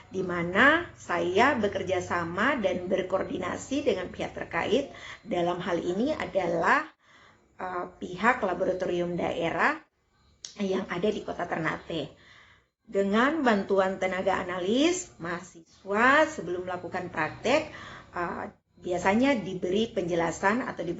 di mana saya bekerja sama dan berkoordinasi dengan pihak terkait. Dalam hal ini adalah pihak laboratorium daerah yang ada di Kota Ternate. Dengan bantuan tenaga analis, mahasiswa sebelum melakukan praktek biasanya diberi penjelasan atau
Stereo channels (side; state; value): both; identical; correlation 1.00